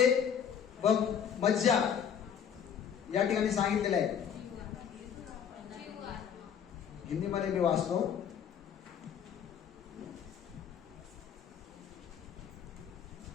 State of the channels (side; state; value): right; quieter; 8.2 dB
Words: व मज्जा या ठिकाणी सांगितलेलं आहे. हिंदीमध्ये मी वाचतो.